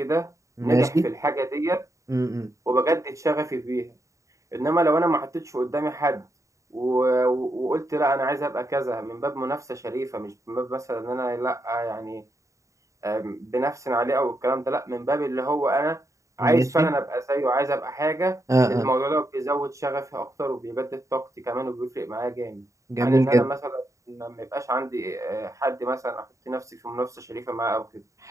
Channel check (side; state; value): left; late; 0.15 ms